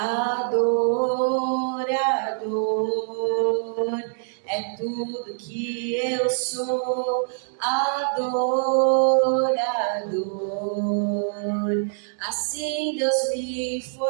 é tudo que eu sou. Adorador. Assim Deus me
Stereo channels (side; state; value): left; silent; digital silence